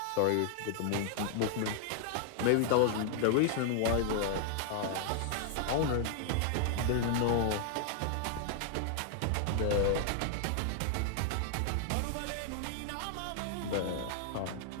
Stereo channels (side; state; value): both; different; correlation -0.01